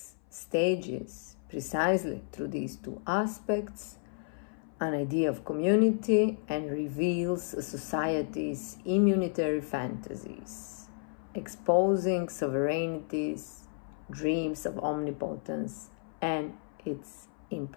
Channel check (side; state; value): right; silent; 56 dB below the other